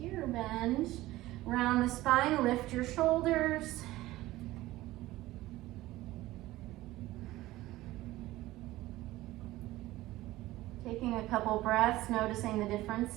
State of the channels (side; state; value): left; quieter; 17.2 dB